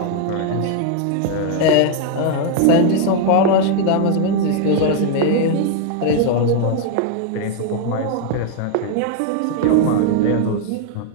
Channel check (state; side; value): different; both; correlation 0.00